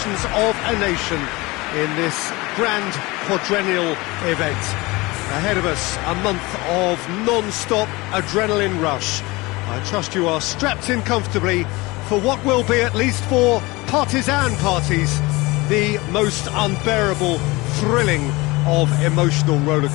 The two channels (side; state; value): right; quieter; 22.8 dB